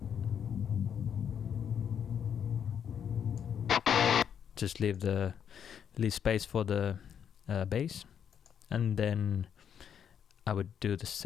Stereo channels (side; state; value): right; quieter; 8.2 dB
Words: Just leave space for the bass, and then I would do the